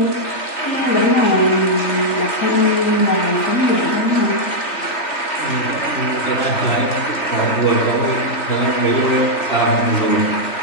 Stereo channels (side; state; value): right; late; 3.1 ms